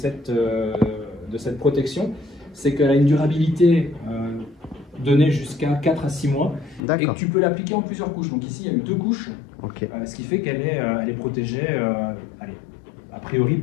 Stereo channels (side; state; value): right; drops out; at 6.8 s